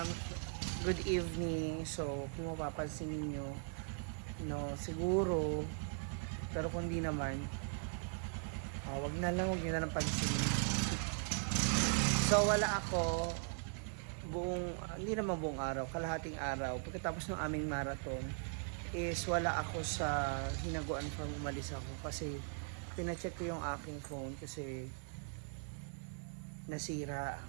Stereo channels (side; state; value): left; silent; 51 dB below the other